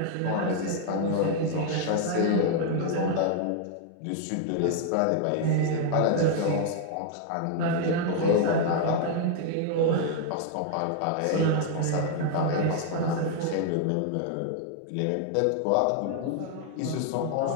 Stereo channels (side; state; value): both; different; correlation 0.00